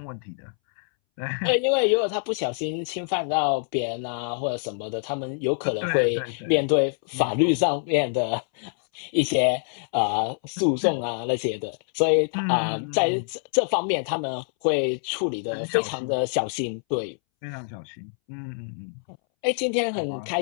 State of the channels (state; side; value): silent; right; 61 dB below the other